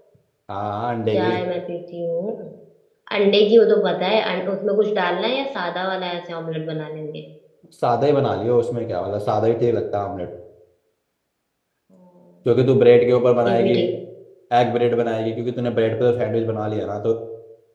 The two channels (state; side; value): identical; both; correlation 1.00